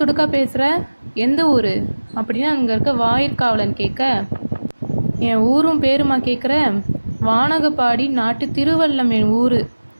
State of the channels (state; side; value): inverted; both; correlation -1.00